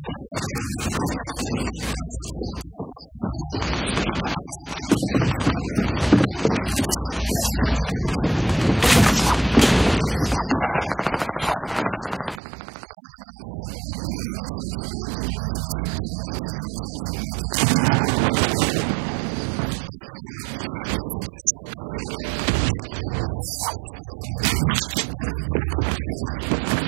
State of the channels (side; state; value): left; drops out; at 12.4 s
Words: the tail of Dougie, but he gets tagged by Stecto here, and that's a good dynamite play to kind of hold this player off. I don't think he wants to stick around, though, if I'm being honest. Yeah, he's just trying to just make the safety. No one wants to stick around here. All these shots flying, people are using this time of chaos to actually rotate, which is not a bad play at all. Dougie, though, he's suspicious right now. He's like, I hear things. I'm sure he does. I hear building close by.